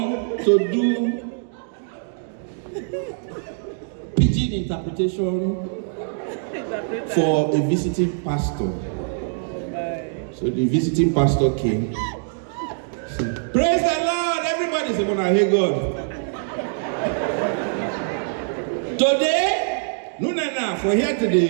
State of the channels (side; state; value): left; silent; digital silence